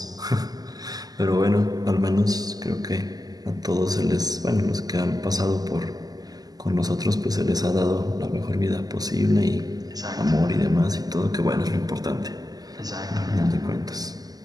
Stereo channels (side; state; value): left; late; 0.18 ms